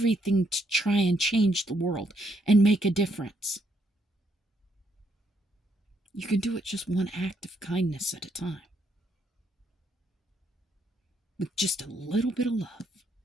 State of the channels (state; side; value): normal; both; correlation 0.74